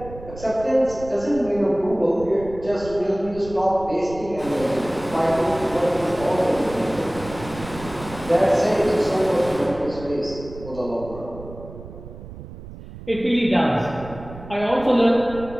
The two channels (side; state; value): right; noise; rumble, 15 dB below the sound